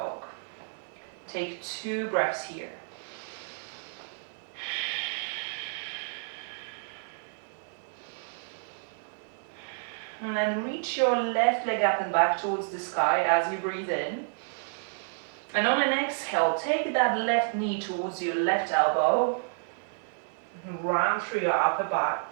Take 2 breaths here. And then reach your left leg up and back towards the sky as you breathe in. And on an exhale, take that left knee towards your left elbow. Round through your upper back.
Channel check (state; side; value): silent; left; 58 dB below the other